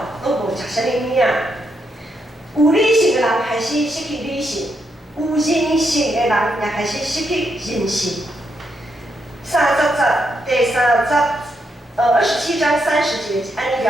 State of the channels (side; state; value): both; normal; correlation 0.80